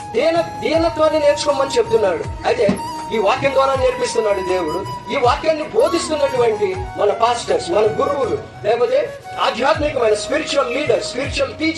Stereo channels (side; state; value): both; identical; correlation 1.00